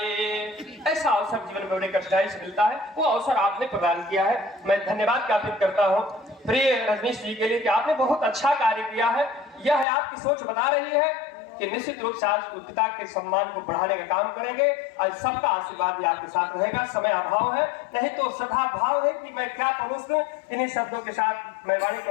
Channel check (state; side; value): drops out; right; at 9.9 s